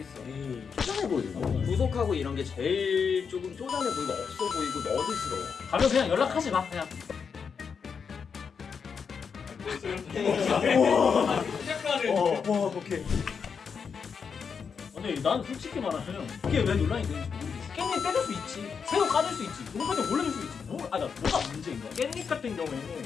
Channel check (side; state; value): right; quieter; 6.2 dB